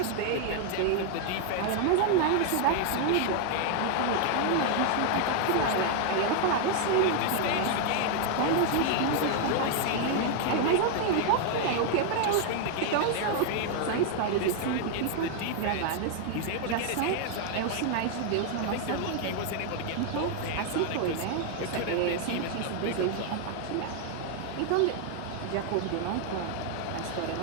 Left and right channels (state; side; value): different; both; correlation 0.00